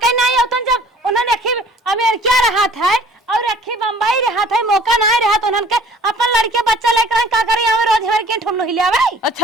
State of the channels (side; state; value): both; normal; correlation 0.52